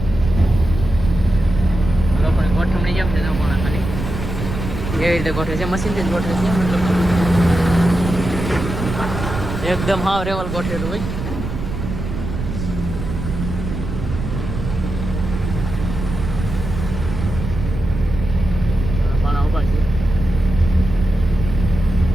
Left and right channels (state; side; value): noise; right; rumble, 6 dB below the sound